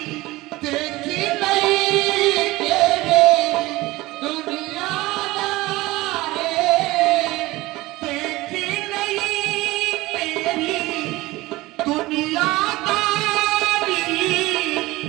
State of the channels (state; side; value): quieter; left; 19.5 dB